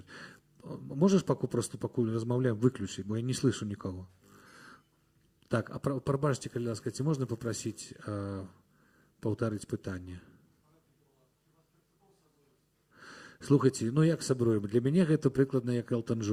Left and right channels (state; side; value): identical; both; correlation 1.00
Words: Можаш пакуль размаўляем, выключыць, бо я не слышу нікого. Так, а прабачце, калі ласка, ці можна попросіць паўтарыць пытанне? Слухайце, як сабруем? Для мяне гэта прыкладна як Элтон